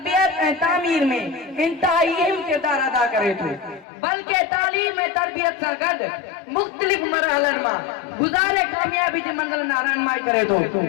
ऐं तामीर में इंतहाई अहम किरदार अदा करे थो, बल्कि तालीम ऐं तरबियत सां गॾु मुख़्तलिफ़ मरहलनि मां गुज़ारे कामयाबी जी मंज़िल नां रहनुमाई करे थो।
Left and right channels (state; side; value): drops out; right; at 3.9 s